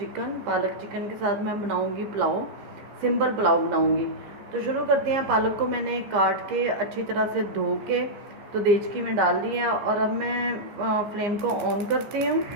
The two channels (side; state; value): left; late; 15 ms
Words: पालक चिकन के साथ मैं बनाऊंगी पुलाव, सिंपल पुलाव बनाऊंगी। तो शुरू करते हैं। पालक को मैंने काट के अच्छी तरह से धो के तो देचकी में डाल दिया, और अब मैं फ्लेम को ऑन करती हूँ